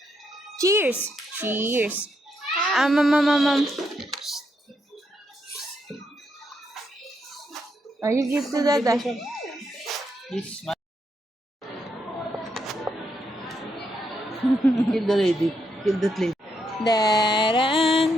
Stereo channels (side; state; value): both; normal; correlation 0.79